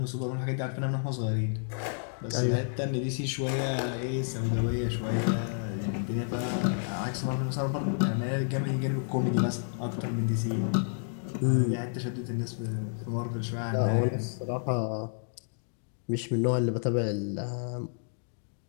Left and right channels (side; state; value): right; silent; digital silence